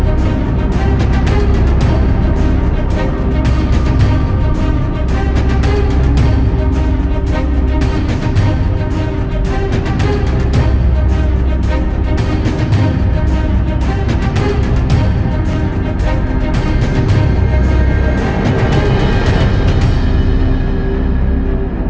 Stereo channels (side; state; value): both; identical; correlation 1.00